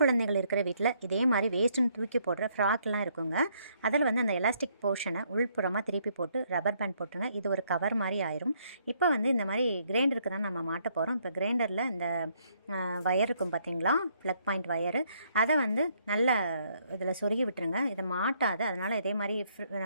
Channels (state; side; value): inverted; both; correlation -0.70